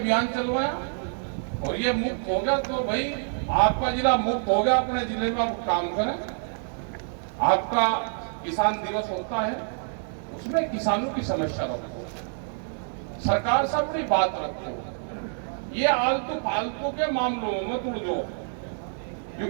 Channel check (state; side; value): silent; left; 60 dB below the other